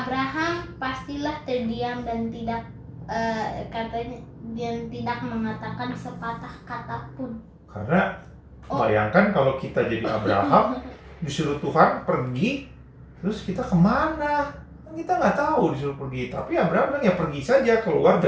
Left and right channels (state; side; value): identical; both; correlation 1.00